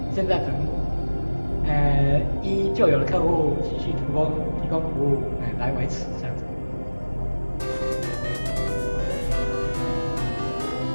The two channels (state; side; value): inverted; both; correlation -1.00